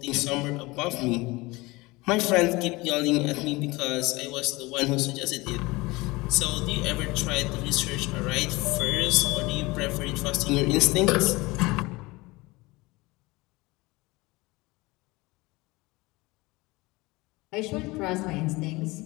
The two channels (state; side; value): quieter; right; 22.5 dB